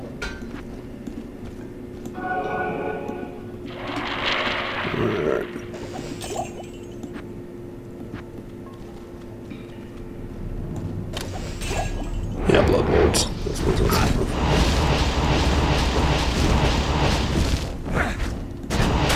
Alright. Yeah, blood lords. That's what it's about.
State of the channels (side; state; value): both; identical; correlation 1.00